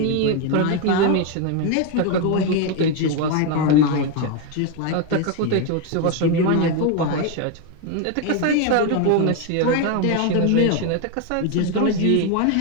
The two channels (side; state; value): both; different; correlation 0.01